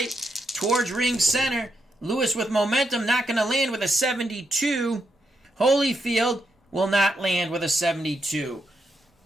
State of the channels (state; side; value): normal; both; correlation 0.82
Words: towards ring center. Lewis with momentum, not going to land with a 72. Holyfield will not land with a 72.